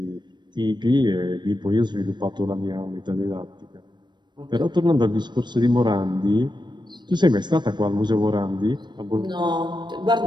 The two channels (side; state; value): left; late; 0.22 ms